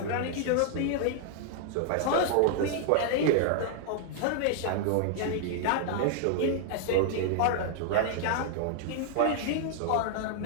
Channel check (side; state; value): both; different; correlation 0.00